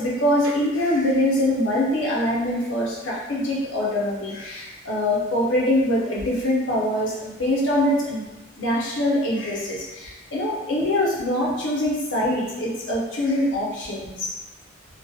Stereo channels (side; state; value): both; normal; correlation 0.42